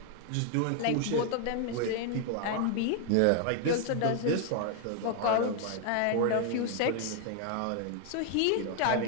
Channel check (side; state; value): both; different; correlation 0.00